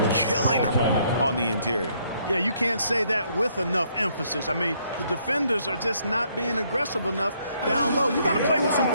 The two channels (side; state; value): both; inverted; correlation -0.69